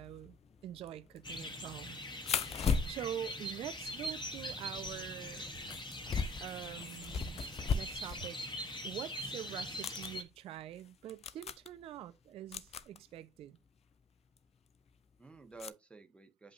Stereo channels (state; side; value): normal; both; correlation 0.52